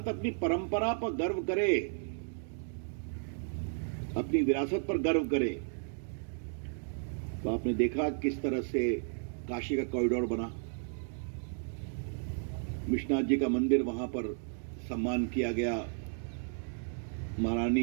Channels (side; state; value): left; silent; 55 dB below the other